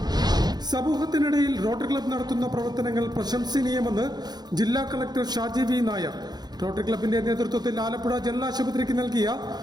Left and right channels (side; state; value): left; late; 0.20 ms